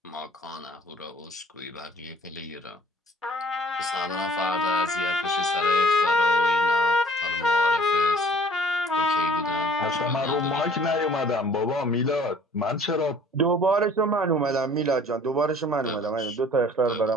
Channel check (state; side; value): normal; both; correlation 0.54